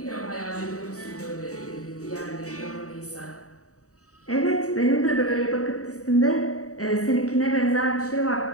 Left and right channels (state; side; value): late; right; 0.66 ms